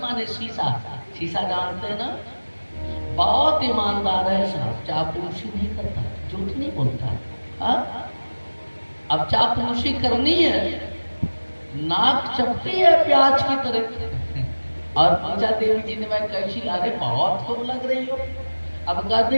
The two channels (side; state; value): both; inverted; correlation -1.00